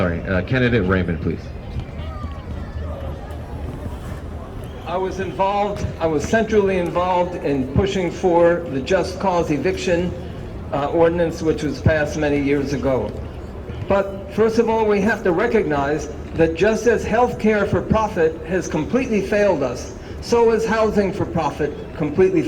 Candidate Raymond, please. I was centrally involved in pushing for the just cause eviction ordinance, which was passed many years ago. But first of all, we have to recognize that just as healthcare for profit has completely failed us, so has housing for profit completely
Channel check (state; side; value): identical; both; correlation 1.00